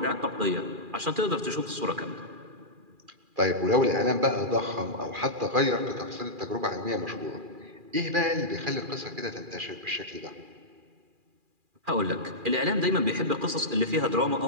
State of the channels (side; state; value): left; late; 2.4 ms